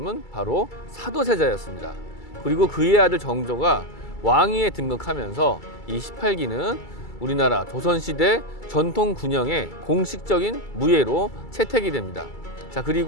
바로 사도세자였습니다. 그리고 그의 아들 정조가 왕위에 등극하면서 이 18기는 우리나라 조선시대 전통 군영의 공식적인 무예로 채택이 됩니다. 자,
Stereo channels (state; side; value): late; right; 2.3 ms